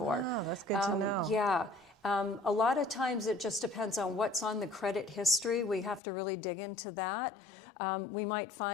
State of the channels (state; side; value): drops out; right; at 6.0 s